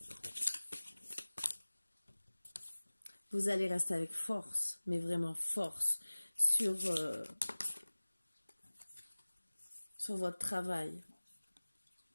Vous allez rester avec force, mais vraiment force, sur votre travail.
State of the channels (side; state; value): both; inverted; correlation -1.00